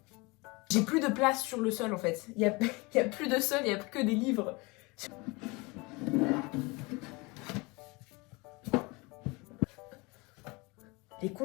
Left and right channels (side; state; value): right; quieter; 26.0 dB